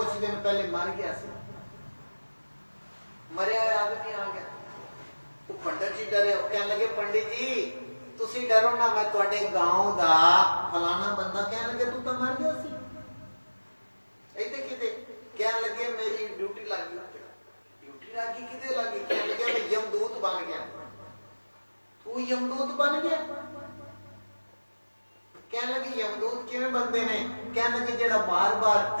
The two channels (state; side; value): inverted; both; correlation -1.00